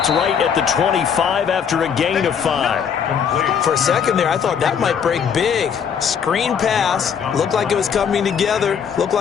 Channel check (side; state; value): right; quieter; 7.3 dB